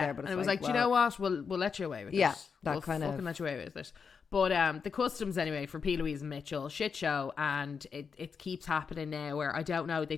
but it was like, do you know what? We'll let you away with it. Yeah, we'll fucking let you away with it. But the customs anyway for PLouise and Mitchell, shit show, and it keeps happening now where I don't know, they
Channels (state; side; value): quieter; right; 5.9 dB